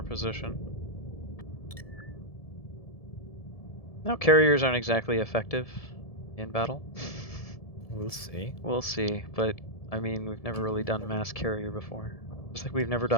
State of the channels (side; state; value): right; late; 1.7 ms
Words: position. Now carriers aren't exactly effective in battle. We'll see. We'll see, but I mean we've never really done mass carrier before. Just like we've never